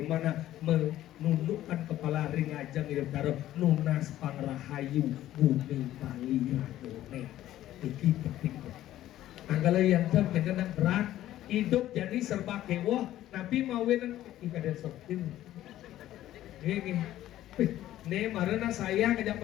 menundukkan kepala ringajang hidup taruh nunas pangrahayu bumi Bali radone. Iki penting. Antara yang terkena berat hidup jadi serba kewah, tapi mau nang ikadar sopin. Gini, nih marana saya ngajak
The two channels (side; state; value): right; quieter; 13.6 dB